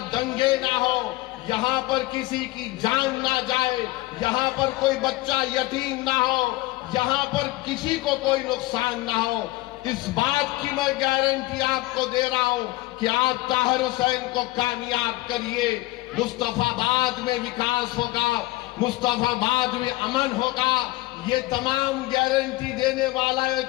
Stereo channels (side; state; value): right; quieter; 19.7 dB